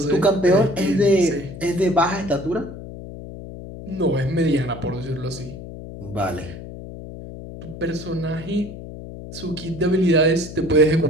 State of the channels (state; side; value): noise; left; hum, 12 dB below the sound